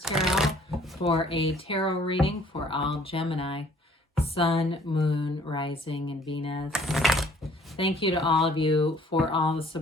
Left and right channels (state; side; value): normal; both; correlation 0.58